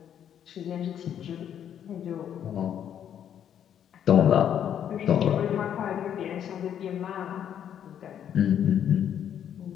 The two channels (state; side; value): quieter; right; 9.4 dB